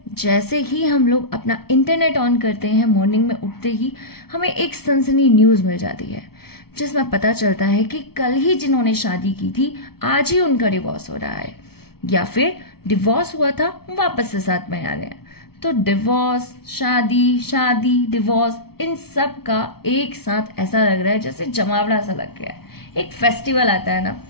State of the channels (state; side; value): late; right; 0.95 ms